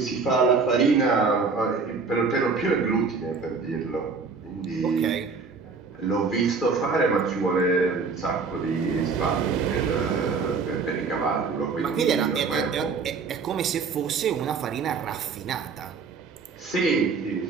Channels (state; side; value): quieter; left; 4.8 dB